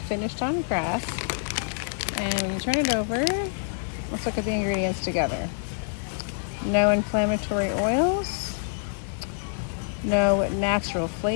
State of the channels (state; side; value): silent; right; 61 dB below the other